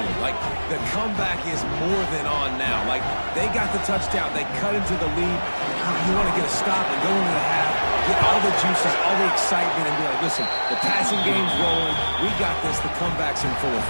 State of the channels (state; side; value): inverted; both; correlation -1.00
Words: Like, the comeback is more than on now. Like, they got the touchdown. They cut into the lead. You want to get a stop and go into the half, get all the juices, all the excitement, and be like, listen, the passing game's rolling. We got this. The comeback's in full